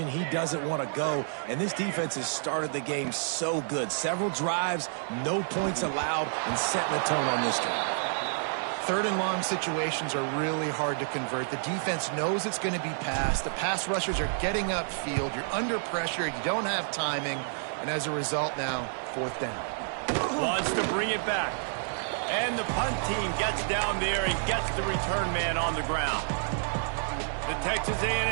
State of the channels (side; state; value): left; silent; digital silence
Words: he doesn't want to go. And this defense has started the game so good. Several drives, no points allowed, and setting the tone on this drive. 3rd and long situations are really hard to convert. The defense knows it's going to be passed. The pass rushers are getting upfield. You're under pressure. You don't have timing. And as a result now, 4th down. Wants to bring it back. And the punt team gets down there and gets the return man on the ground. The Texas